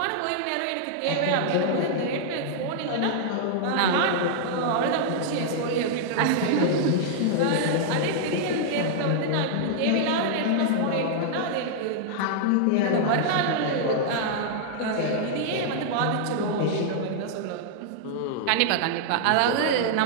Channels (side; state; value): both; different; correlation -0.01